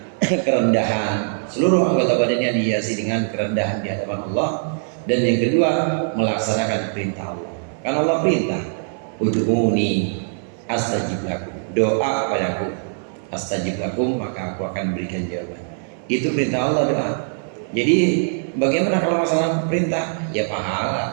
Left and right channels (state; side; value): silent; left; digital silence